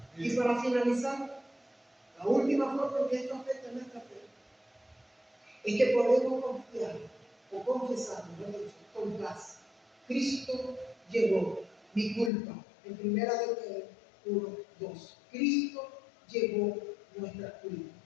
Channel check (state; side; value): drops out; right; at 12.3 s